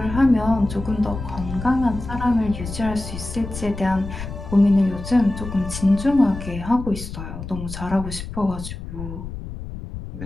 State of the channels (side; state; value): left; noise; rumble, 9 dB below the sound